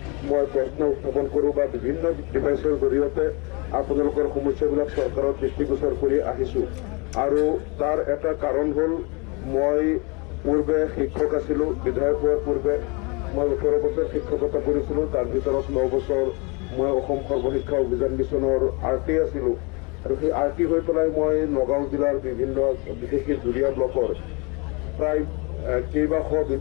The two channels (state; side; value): quieter; right; 30.1 dB